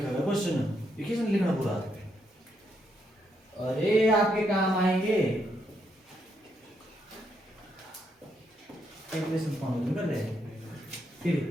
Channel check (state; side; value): normal; both; correlation 0.77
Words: हुआ क्वेश्चन, देखिए सर लिखना पूरा। अरे आपके काम आएंगे कैलकुलेशन फॉर्म कर रहे फिर